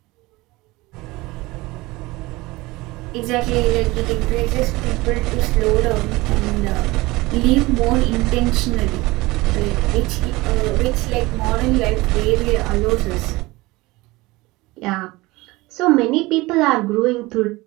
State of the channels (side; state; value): left; quieter; 21.2 dB